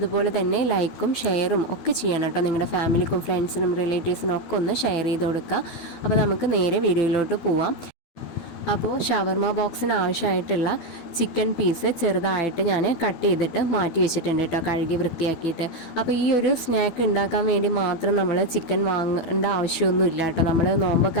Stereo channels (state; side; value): late; right; 12 ms